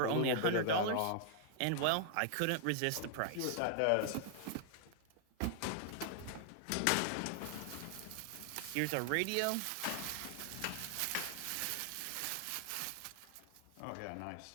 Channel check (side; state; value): both; different; correlation 0.00